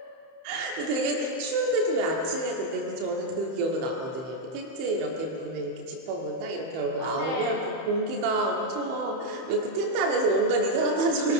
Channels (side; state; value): left; late; 31 ms